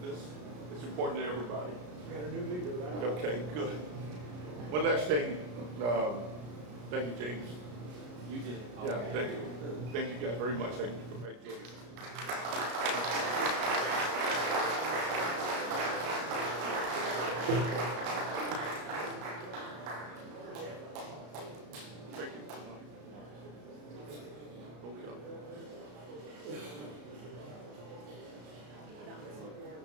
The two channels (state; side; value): late; left; 33 ms